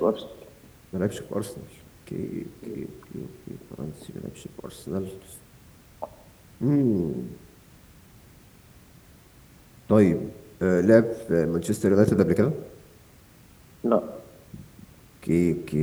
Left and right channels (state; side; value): identical; both; correlation 1.00